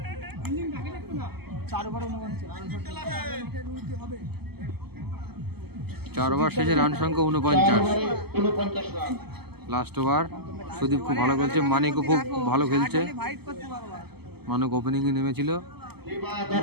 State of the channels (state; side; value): late; left; 0.96 ms